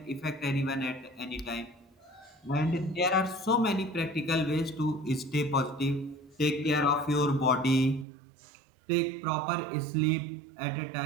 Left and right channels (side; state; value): left; drops out; at 8.1 s